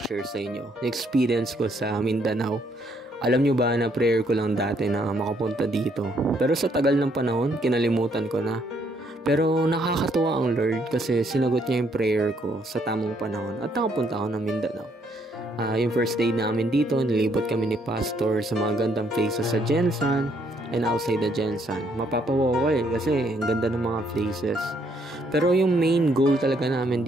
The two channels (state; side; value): normal; both; correlation 0.70